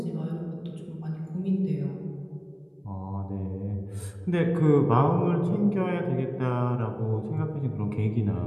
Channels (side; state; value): both; identical; correlation 1.00